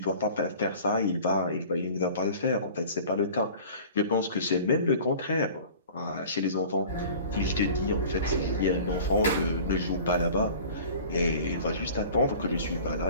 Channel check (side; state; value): both; inverted; correlation -0.43